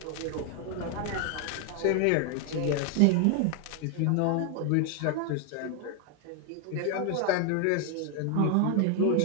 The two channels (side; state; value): both; different; correlation 0.00